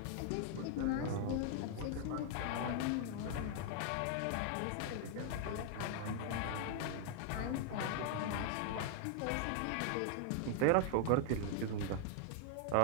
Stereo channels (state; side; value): different; both; correlation 0.00